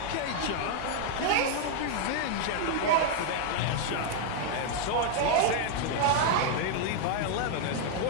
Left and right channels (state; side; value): different; both; correlation 0.00